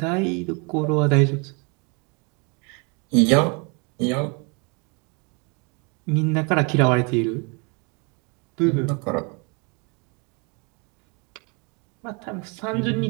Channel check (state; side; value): quieter; left; 32.4 dB